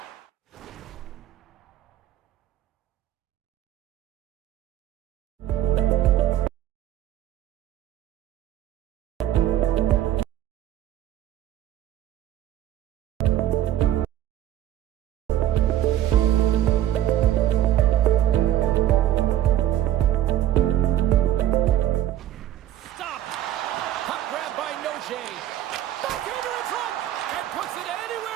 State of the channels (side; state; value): left; quieter; 12.2 dB